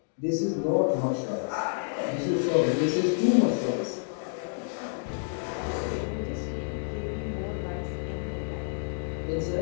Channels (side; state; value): right; silent; digital silence